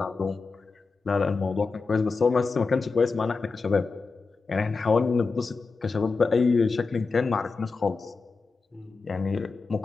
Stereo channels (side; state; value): right; quieter; 4.3 dB